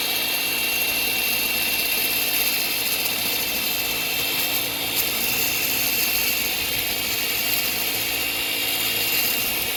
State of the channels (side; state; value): both; normal; correlation 0.97